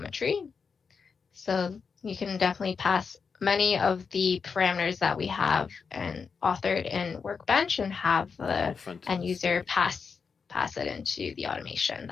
So you can definitely pass many of the parameters that we have and authored in Workbench and have the end user pass it into the automation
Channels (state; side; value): quieter; right; 5.6 dB